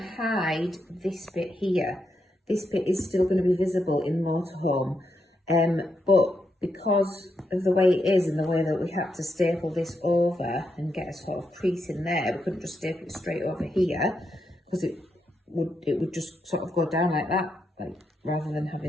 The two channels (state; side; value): normal; both; correlation 0.82